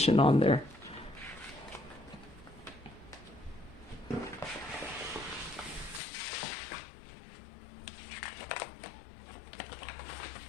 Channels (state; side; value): drops out; right; at 6.0 s